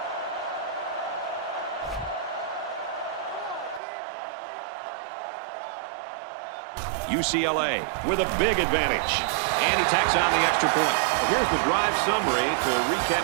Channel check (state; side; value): drops out; left; at 3.8 s